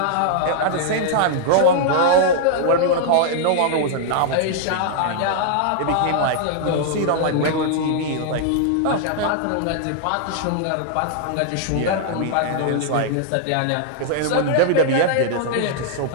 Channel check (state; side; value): different; both; correlation -0.01